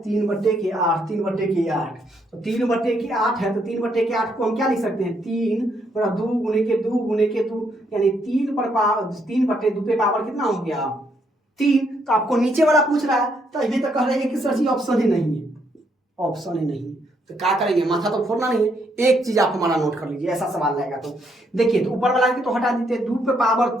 3 बटे के 8, 3 बटे के 8, तो 3 बटे के 8 है, तो 3 बटे के 8 को हम क्या लिख सकते हैं, 3 बड़ा 2 गुने के 2 गुने के 2, यानी 3 पर पावर 3 बटे 2 पे पावर कितना हो गया, 3। तो आपको नीचे वाला पूछ रहा है, तो अभी तक कह रहे हैं कि सर जी ऑप्शन ही नहीं है, ऑप्शन ही नहीं है, तो क्या करेंगे, माथा तो फोड़ना नहीं है, एक चीज आप हमारा नोट कर लीजिए, ऐसा सवाल रहेगा तो देखिए, तो ऊपर वाला तो हटा देते हैं, 2 पे पावर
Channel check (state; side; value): normal; both; correlation 0.74